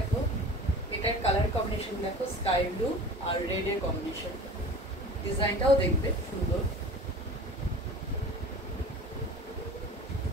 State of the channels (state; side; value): normal; both; correlation 0.39